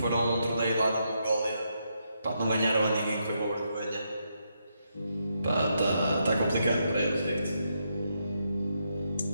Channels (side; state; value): both; inverted; correlation -0.80